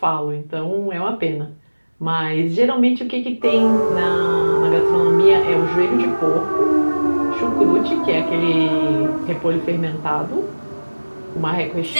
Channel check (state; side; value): inverted; both; correlation -1.00